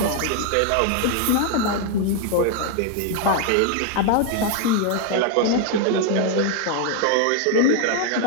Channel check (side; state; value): both; different; correlation 0.00